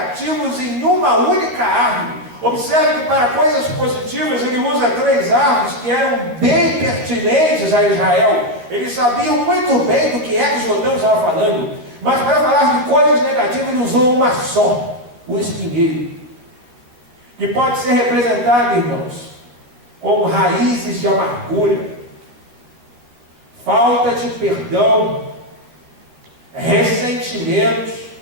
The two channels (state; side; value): late; left; 12 ms